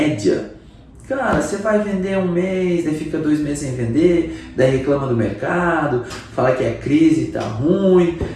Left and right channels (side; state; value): both; identical; correlation 1.00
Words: cara, você vai vender um mês, daí fica 2 meses sem vender, daí reclama do mercado, fala que é crise, tá ruim.